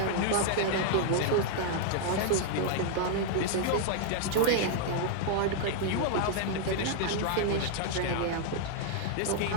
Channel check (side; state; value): both; different; correlation -0.01